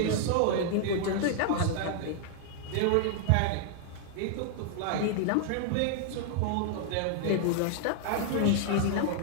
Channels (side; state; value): both; different; correlation 0.00